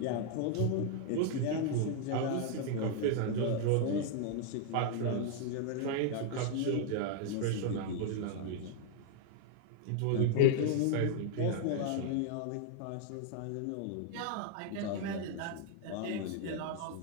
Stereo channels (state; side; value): different; both; correlation 0.00